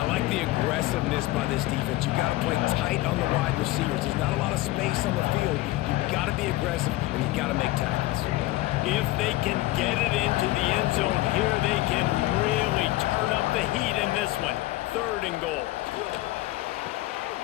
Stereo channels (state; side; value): quieter; right; 18.1 dB